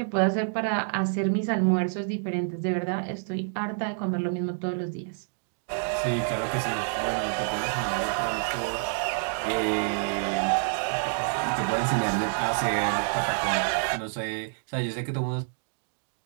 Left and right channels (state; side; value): silent; left; digital silence